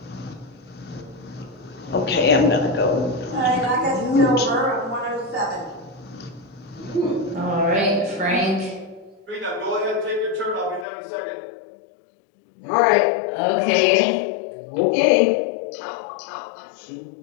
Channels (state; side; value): drops out; right; at 10.9 s